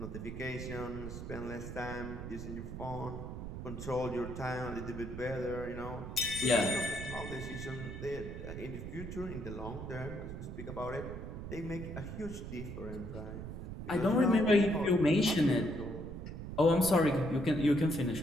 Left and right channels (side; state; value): right; noise; rumble, 8 dB below the sound